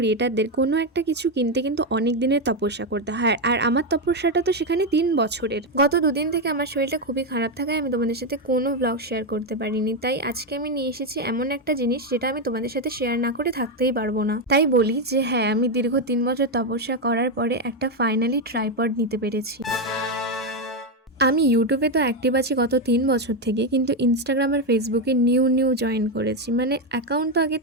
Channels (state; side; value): normal; both; correlation 0.06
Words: কোনো একটা কিছু কিনতে কিন্তু অনেক দিনের তপস্যা করতে হয়। আর আমার তপস্যাটা তো সেখানে ৩ বছরের। গত ২ দিন থেকে আমার শরীরটা খুবই খারাপ থাকায় আমি তোমাদের সাথে কোনো ব্লগ শেয়ার করতে পারিনি। তাই আজকে আমি নিয়ে এসেছি এমন একটা জিনিস যেটা আমি তোমাদের সাথে শেয়ার না করে থাকতেই পারবো না। তাই বলি যে হ্যাঁ, আমি দীর্ঘ ৩ বছর তপস্যা করার পরে একটা ফাইনালি ট্রাইপড নিতে পেরেছি। আমি ইউটিউবে তো অ্যাক্টিভ আছি গত ৩ বছর থেকে, কিন্তু ইনস্টাগ্রাম আর ফেসবুকে নিউ জয়েন করেছি। মানে অ্যাকাউন্ট তো আগের